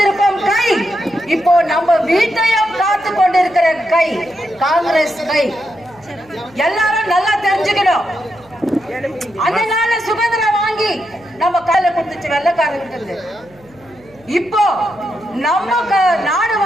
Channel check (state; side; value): noise; right; hum, 28 dB below the sound